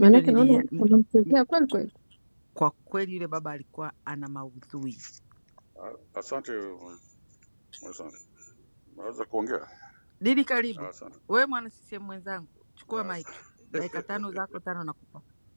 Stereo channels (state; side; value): inverted; both; correlation -1.00